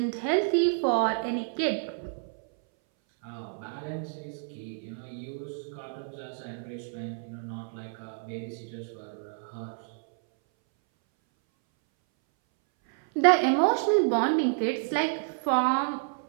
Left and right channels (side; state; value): left; silent; 58 dB below the other